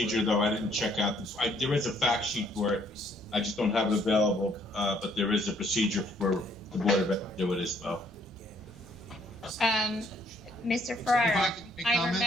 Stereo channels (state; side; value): normal; both; correlation 0.65